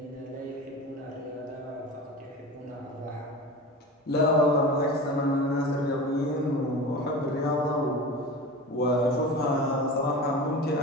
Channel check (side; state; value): both; normal; correlation 0.31